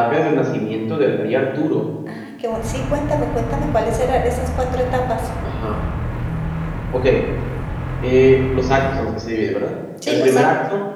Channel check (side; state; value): both; identical; correlation 1.00